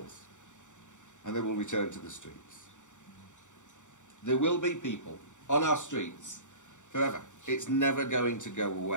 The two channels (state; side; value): late; right; 0.85 ms